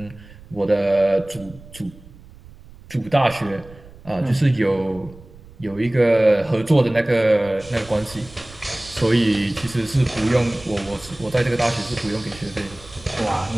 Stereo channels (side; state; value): right; noise; rumble, 21 dB below the sound